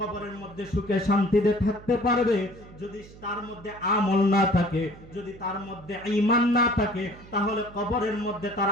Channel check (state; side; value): noise; right; hum, 20 dB below the sound